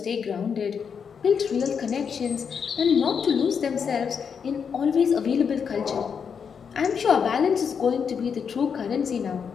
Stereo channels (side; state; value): right; quieter; 6.7 dB